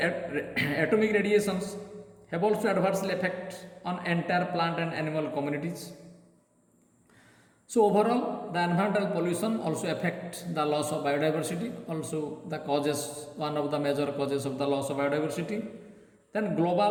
radiations have also adversely effect on entire plant and animal communities. So overall the environmental pollution also affect the loss of biodiversity, also the causes, one of the major causes of the loss of biodiversity. Then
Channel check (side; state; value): both; identical; correlation 1.00